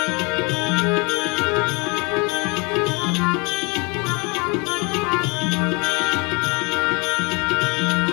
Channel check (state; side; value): quieter; right; 29.9 dB